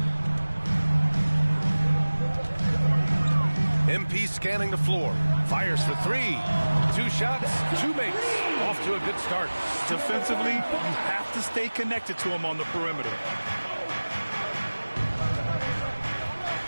MP scanning the floor. Fires for three. 2 shots, 2 makes. Off to a good start. Defensively, you have to stay connected to him on the perimeter.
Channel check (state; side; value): inverted; both; correlation -1.00